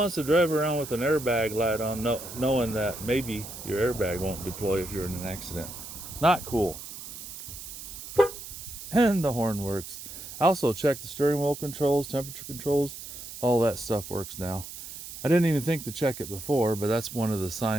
to drive around with an airbag light on knowing that maybe your airbag won't deploy if you're in an accident? Not cool. And the horn works. I also checked the steering wheel controls, temperature controls, all that stuff works now. I didn't even think to check it before, but that's one of the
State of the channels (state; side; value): noise; right; hiss, 11 dB below the sound